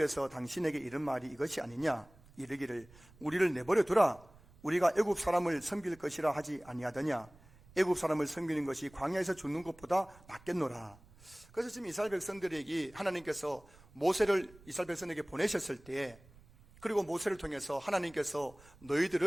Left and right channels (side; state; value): right; noise; rumble, 24 dB below the sound